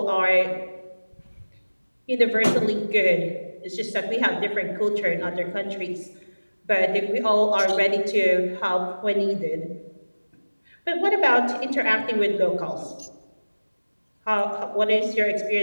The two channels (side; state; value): both; inverted; correlation -1.00